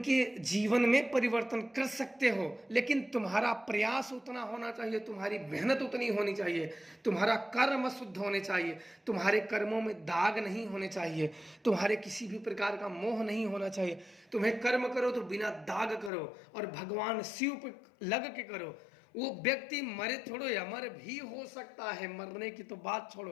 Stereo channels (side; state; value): right; drops out; at 16.1 s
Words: जीवन में परिवर्तन कर सकते हो, लेकिन तुम्हारा प्रयास उतना होना चाहिए, तुम्हारी मेहनत उतनी होनी चाहिए, तुम्हारा कर्म शुद्ध होने चाहिए, तुम्हारे कर्मों में दाग नहीं होने चाहिए, तुम्हारे किसी भी प्रकार का मोह नहीं होना चाहिए। तुम्हें कर्म करो तो बिना दाग करो और भगवान शिव पे लग के करो। वो व्यक्ति मरे छोड़ो या मर भी हो सकता है, मरने की तो बात